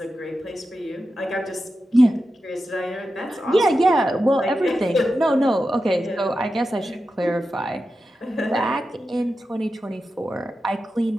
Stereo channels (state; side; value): normal; both; correlation 0.91